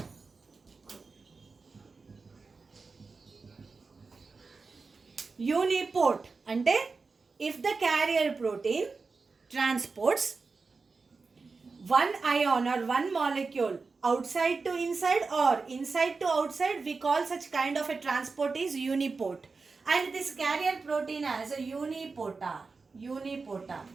Uniport అంటే if the carrier protein transports one ion or one molecule outside to inside or inside to outside, we call such kind of a transport is uniport. And this carrier protein as a unipotar. Unipotar.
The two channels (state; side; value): quieter; left; 4.3 dB